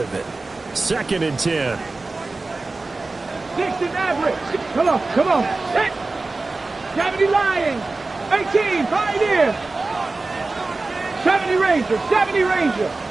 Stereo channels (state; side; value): quieter; left; 3.4 dB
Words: of it. Second and 10. 60 average. Come on, come on. Hit. 70 Lions. 18 Pioneer. 70 Ranger. 70 Ranger.